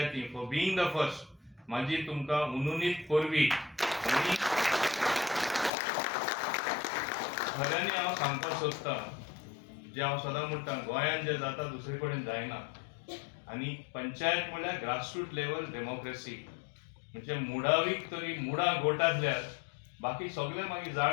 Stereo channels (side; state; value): right; drops out; at 5.7 s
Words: फॉर बिईंग द फर्स्ट म्हाजी तुमकां उनुनीत परबी. आनी खऱ्यांनी हांव सांगपाक सोदतां जे हांव सदां म्हणटा गोंयांत जे जाता दुसरे कडेन जायना. आनी पंचायत म्हणल्यार ग्रासरूट लेवल डेमोक्रेसी, म्हणजे मुडावीक तरी मुडां गोटातल्यार बाकी सगळे मागीर